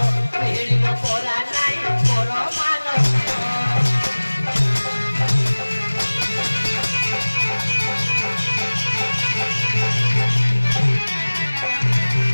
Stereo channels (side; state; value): both; inverted; correlation -1.00